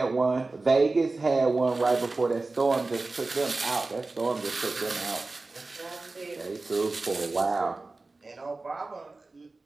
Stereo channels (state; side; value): quieter; left; 3.4 dB